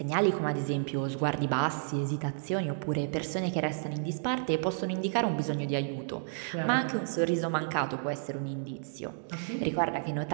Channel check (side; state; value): left; silent; digital silence